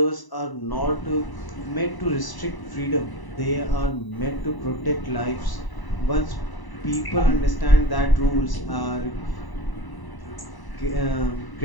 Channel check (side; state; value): right; late; 1.0 ms